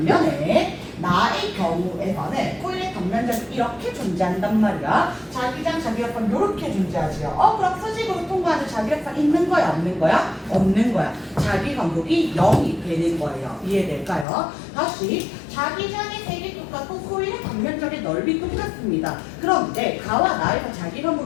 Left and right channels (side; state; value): right; drops out; at 14.2 s